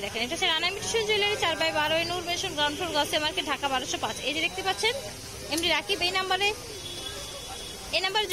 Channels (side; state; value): both; identical; correlation 1.00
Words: দেখেন, এটা হচ্ছে Rana Mitu jewellery, 4/12 Noor mansion, ground floor, গসে মার্কেট, ঢাকা 1205। এই যে দেখতে পাচ্ছেন এমডি রাকিব, এই নাম্বারে